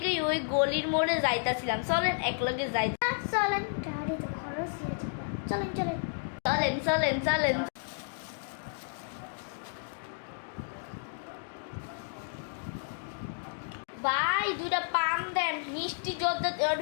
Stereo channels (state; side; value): silent; right; digital silence